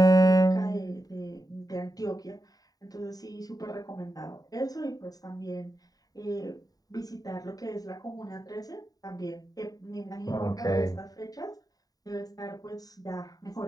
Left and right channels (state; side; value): late; right; 0.18 ms